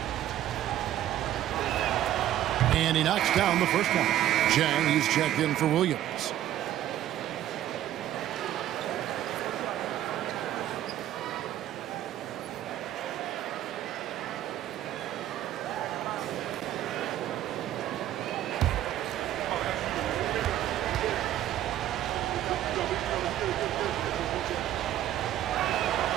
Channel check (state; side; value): quieter; left; 12.4 dB